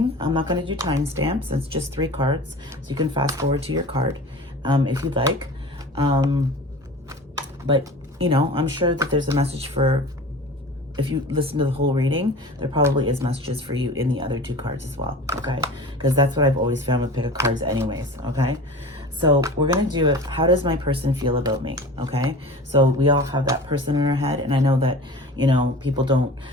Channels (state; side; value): normal; both; correlation 0.38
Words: I'm not going to do timestamps. It's just 3 cards, so you can fast forward to your card if you'd like. But, you know, I'm sure that there's a message for, if you listen to the whole reading, there probably is messages for you in the other 2 cards as well, okay? Because that's what I've always found with pick a cards anyways, okay? So we're going to do it. How does my person feel about me? Okay. So we all have that person in our head. And I know that, you know, people don't,